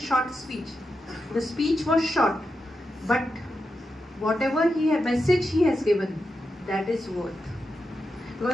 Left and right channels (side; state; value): both; normal; correlation 0.88